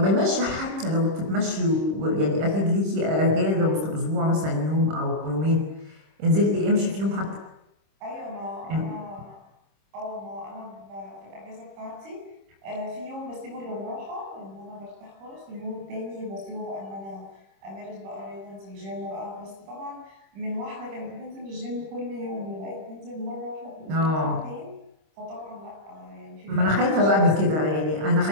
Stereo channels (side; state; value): left; late; 26 ms